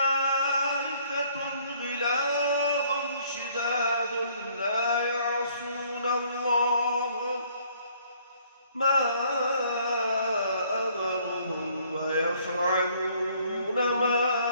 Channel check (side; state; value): both; inverted; correlation -0.62